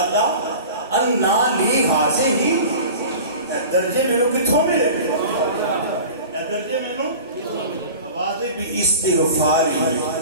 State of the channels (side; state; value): both; inverted; correlation -0.38